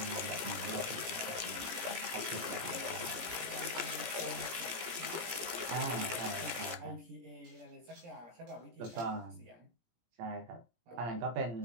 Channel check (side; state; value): left; late; 17 ms